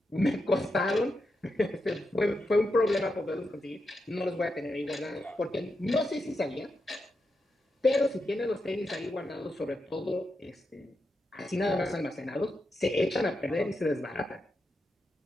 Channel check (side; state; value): both; normal; correlation 0.86